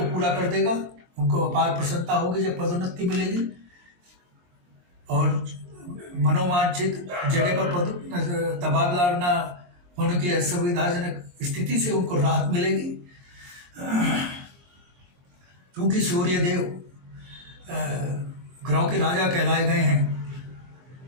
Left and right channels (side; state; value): left; late; 23 ms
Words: पूरा कर देगा। उनको अपार प्रसन्नता होगी जब पदोन्नति मिलेगी, और मनोवांछित जगह पर तबादला ना होने की असुविधाजनक स्थिति से उनको राहत मिलेगी। क्योंकि सूर्य देव ग्रहों के राजा कहलाए गए हैं,